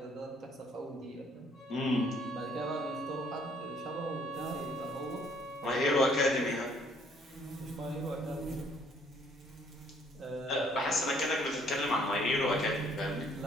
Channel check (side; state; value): both; normal; correlation 0.63